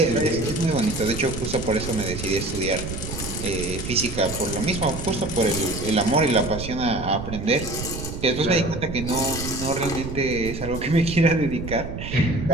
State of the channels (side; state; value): right; noise; rumble, 7 dB below the sound